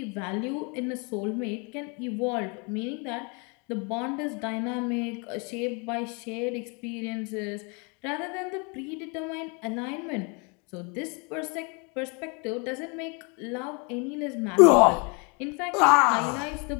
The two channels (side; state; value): right; quieter; 33.0 dB